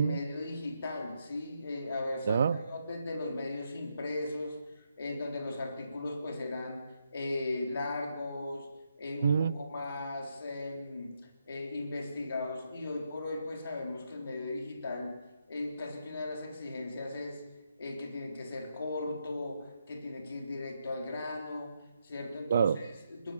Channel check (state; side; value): inverted; both; correlation -0.80